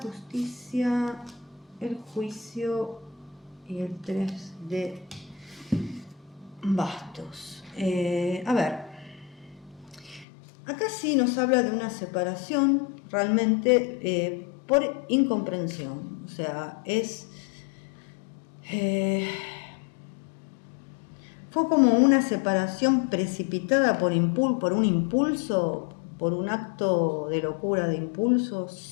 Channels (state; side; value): drops out; right; at 10.2 s